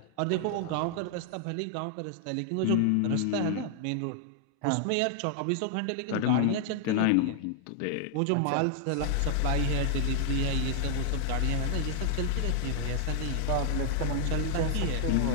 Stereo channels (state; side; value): different; both; correlation 0.00